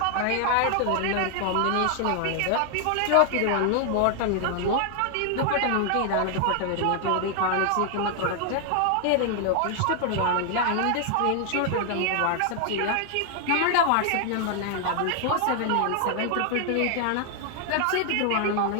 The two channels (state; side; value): different; both; correlation 0.00